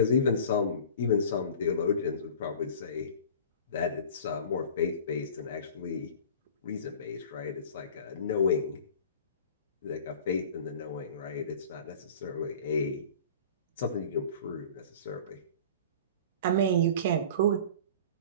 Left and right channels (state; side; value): inverted; both; correlation -0.41